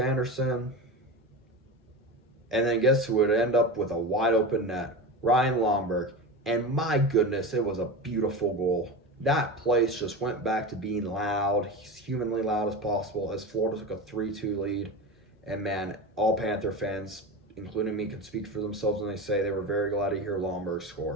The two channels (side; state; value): both; normal; correlation 0.25